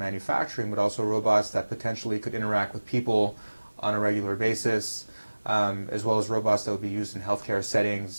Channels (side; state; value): both; inverted; correlation -1.00